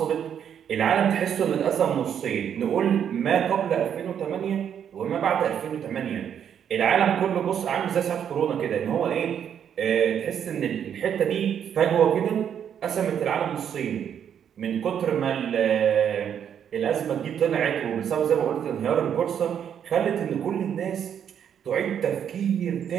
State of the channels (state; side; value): quieter; left; 8.7 dB